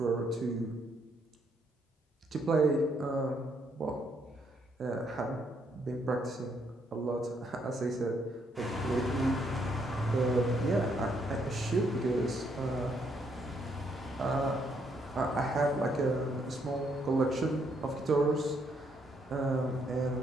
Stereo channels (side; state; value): both; normal; correlation 0.73